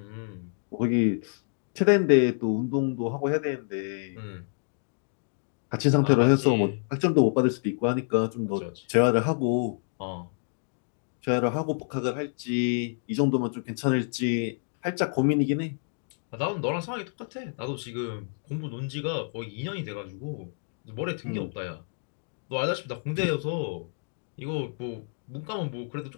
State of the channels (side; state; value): right; silent; digital silence